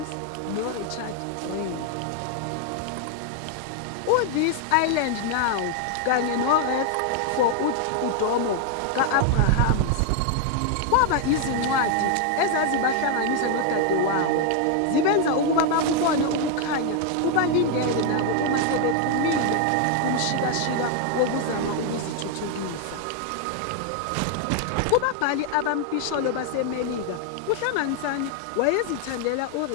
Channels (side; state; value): both; different; correlation 0.00